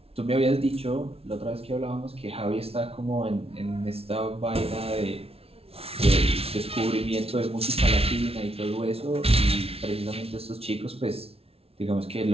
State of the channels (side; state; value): left; late; 0.29 ms